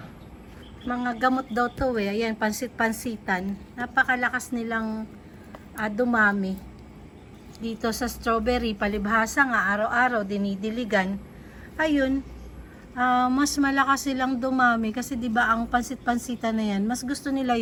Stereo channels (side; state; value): both; identical; correlation 1.00